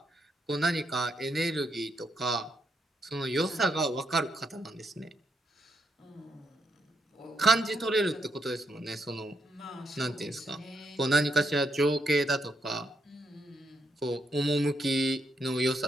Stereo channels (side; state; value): both; normal; correlation 0.79